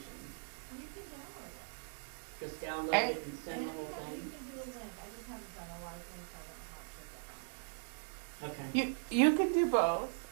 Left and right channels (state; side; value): silent; left; digital silence